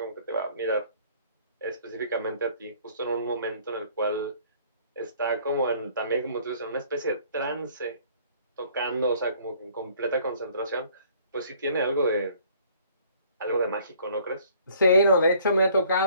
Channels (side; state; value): both; inverted; correlation -0.58